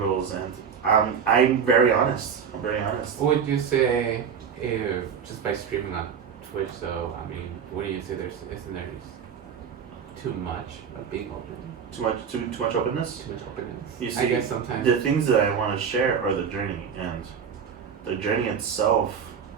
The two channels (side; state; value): left; quieter; 7.0 dB